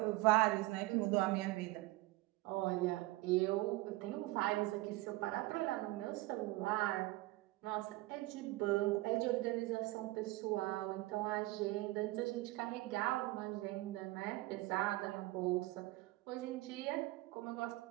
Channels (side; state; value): left; quieter; 19.8 dB